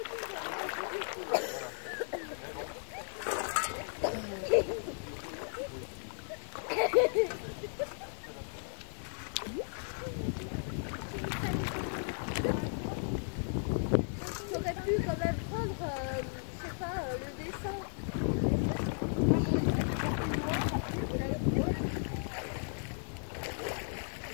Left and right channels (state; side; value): silent; right; digital silence